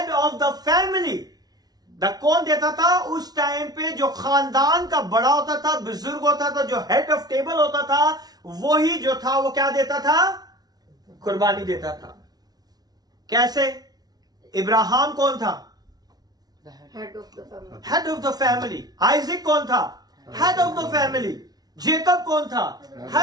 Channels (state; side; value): late; left; 0.19 ms